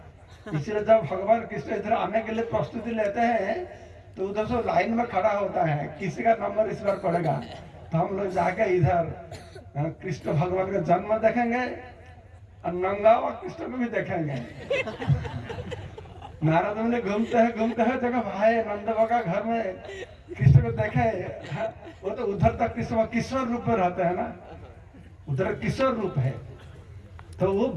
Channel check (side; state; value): both; identical; correlation 1.00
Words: इसलिए जब भगवान कृष्ण इधर आने के लिए प्रस्तुति लेते हैं तो उधर से लाइन में खड़ा होता है, किसी का नंबर इस बार पड़ेगा। तो हम लोग जाके इधर कृष्ण भगवान का जन्म देखेंगे और नंगा हुआ कृष्ण को भी देखेंगे। नारद मुनि घूमते हैं जगह भाई नंद बाबा का घर में कृष्ण को देखे, वो तो उधर तक कृष्ण किशोर रूप में रहते हैं ना, उधर किशोर रूप है, तो वो